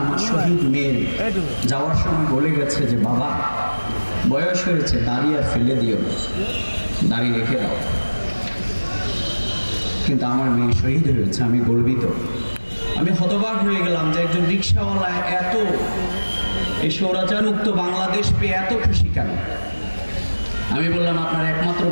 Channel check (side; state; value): both; inverted; correlation -1.00